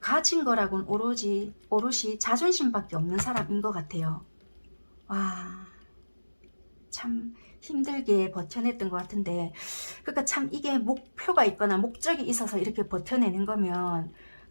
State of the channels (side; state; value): both; inverted; correlation -1.00